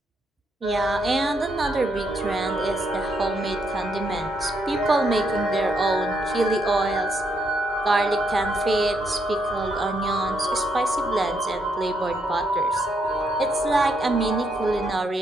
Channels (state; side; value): normal; both; correlation 0.76